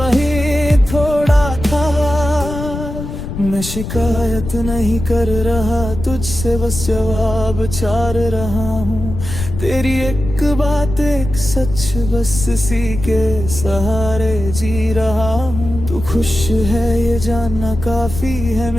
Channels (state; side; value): noise; left; rumble, 7 dB below the sound